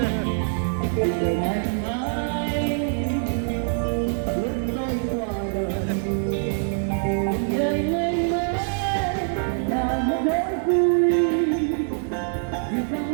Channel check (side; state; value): left; silent; 62 dB below the other